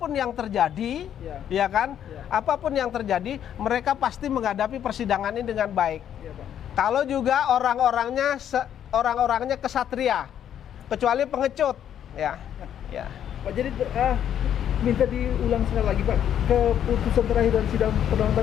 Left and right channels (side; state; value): right; quieter; 9.8 dB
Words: yang terjadi, Iya. ya kan? Iya. Apapun yang terjadi, mereka pasti menghadapi persidangan ini dengan baik. Iya Pak. Kalau juga orang-orangnya kesatria, kecuali pengecut, ya. Ya. Pak, jadi minta diulang sekali lagi Pak, keputusan terakhir dari sidang perdangan